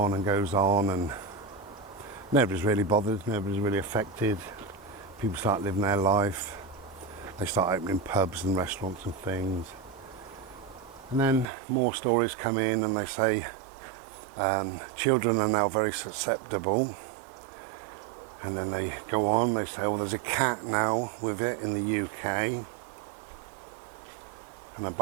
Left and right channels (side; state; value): left; drops out; at 11.5 s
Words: and nobody's really bothered, nobody's really affected. People start living their life. They start opening pubs and restaurants and things. And then more stories come in and they say children are now very susceptible. And then they go on, they say, oh, there's a cat now with it in the UK. And a